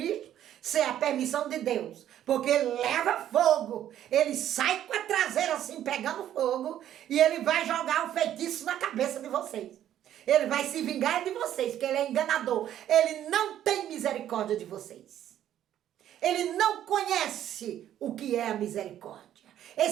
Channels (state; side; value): quieter; left; 11.3 dB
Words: sem a permissão de Deus. Porque ele leva fogo, ele sai com a traseira assim, pegando fogo, e ele vai jogar um feitiço na cabeça de vocês. Ele vai se vingar de vocês, porque ele é enganador. Ele não tem misericórdia de vocês. Ele não conhece o que é a misericórdia.